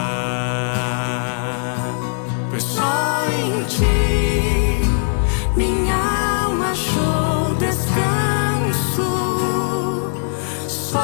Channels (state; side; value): silent; right; digital silence